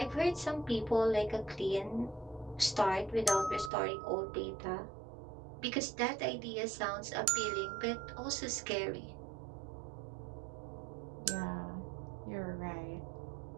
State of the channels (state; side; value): drops out; left; at 3.7 s